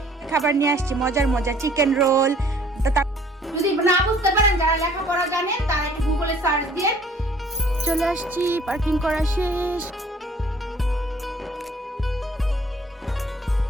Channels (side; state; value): both; normal; correlation 0.57